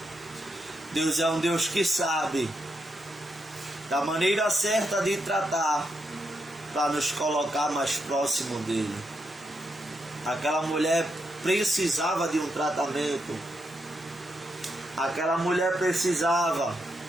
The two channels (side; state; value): both; normal; correlation 0.82